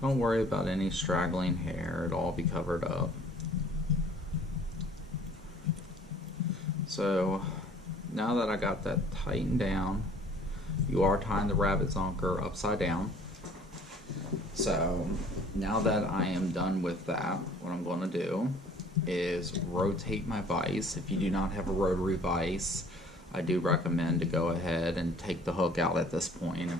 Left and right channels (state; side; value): normal; both; correlation 0.54